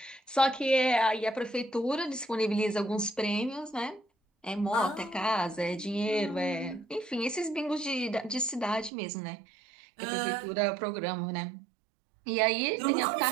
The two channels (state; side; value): drops out; left; at 8.9 s